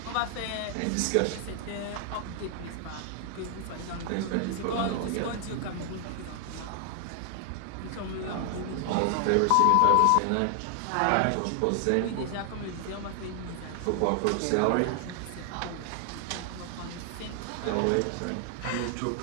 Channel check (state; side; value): different; both; correlation 0.00